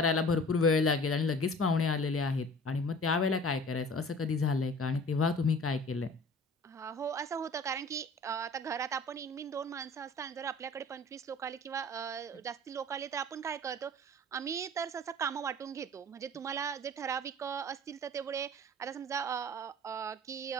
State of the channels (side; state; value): both; normal; correlation 0.45